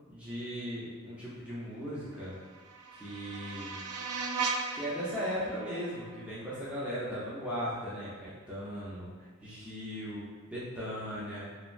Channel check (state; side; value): normal; both; correlation 0.18